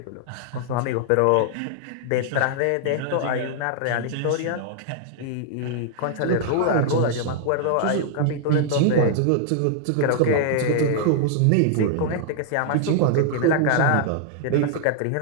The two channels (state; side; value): different; both; correlation -0.01